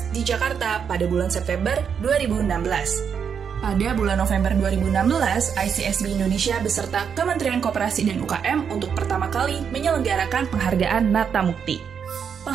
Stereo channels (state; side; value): quieter; left; 7.1 dB